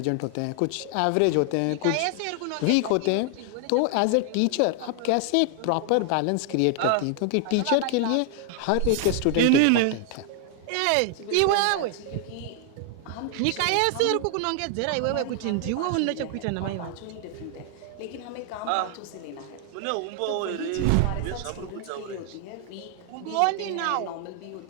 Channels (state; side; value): different; both; correlation 0.00